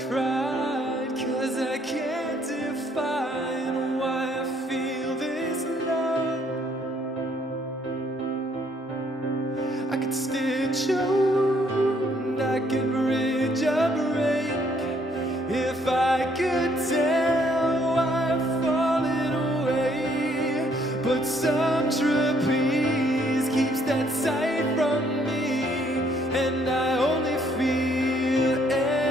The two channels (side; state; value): both; normal; correlation 0.67